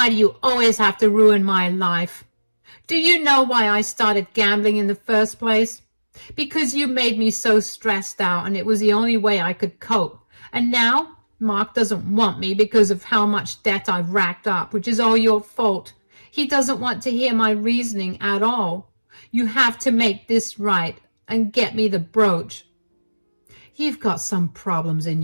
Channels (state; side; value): inverted; both; correlation -1.00